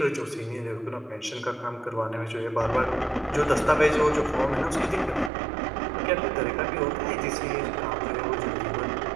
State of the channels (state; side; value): drops out; left; at 5.3 s